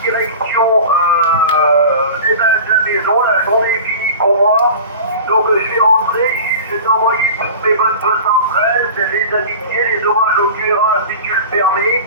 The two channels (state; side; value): inverted; both; correlation -0.36